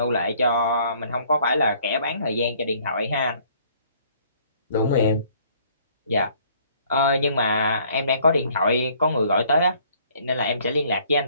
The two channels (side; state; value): both; inverted; correlation -0.60